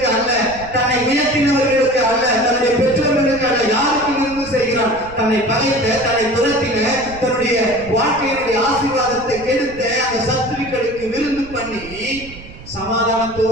அல்ல, தன்னை உயர்த்தினவர்களுக்கு அல்ல, தன்னுடைய பெற்றோர்களுக்கு அல்ல. யாருக்கு விருந்து செய்கிறான்? தன்னை பகைத்த, தன்னை துரத்தின, தன்னுடைய வாழ்க்கையினுடைய ஆசீர்வாதத்தை கெடுத்த அந்த சத்துருக்களுக்கு விருந்து பண்ணி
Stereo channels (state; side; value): noise; right; rumble, 16 dB below the sound